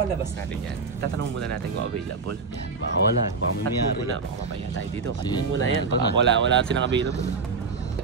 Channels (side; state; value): left; quieter; 4.5 dB